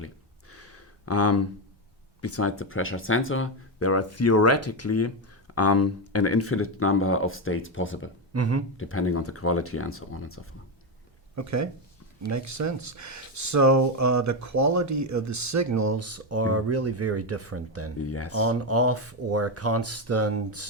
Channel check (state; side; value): normal; both; correlation 0.09